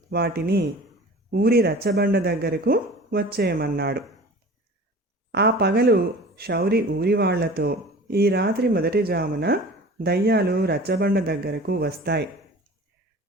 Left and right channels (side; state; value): both; normal; correlation 0.41